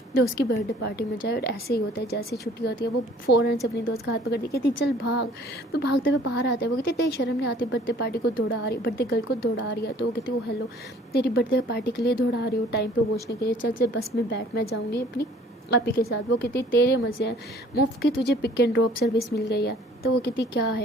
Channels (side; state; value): both; normal; correlation 0.54